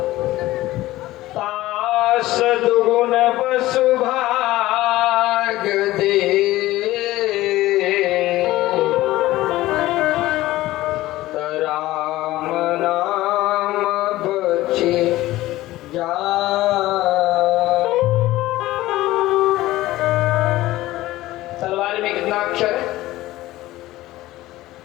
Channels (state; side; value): quieter; right; 16.8 dB